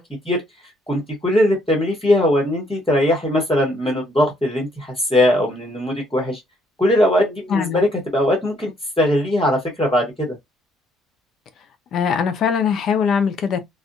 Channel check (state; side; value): normal; both; correlation 0.68